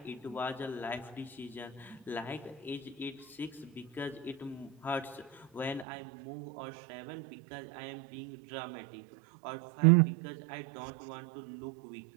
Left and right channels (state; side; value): drops out; left; at 5.9 s